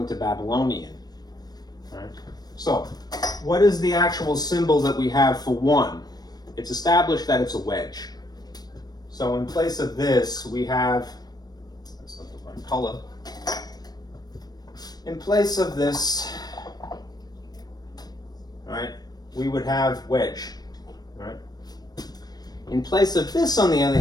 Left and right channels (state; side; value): late; right; 0.19 ms